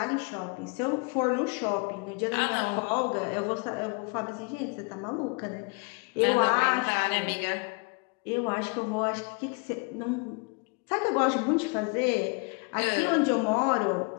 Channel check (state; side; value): quieter; right; 32.3 dB